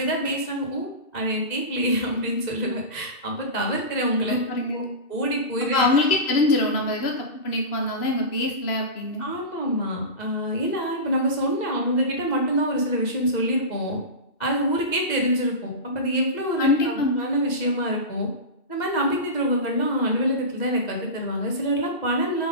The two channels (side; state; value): right; late; 2.7 ms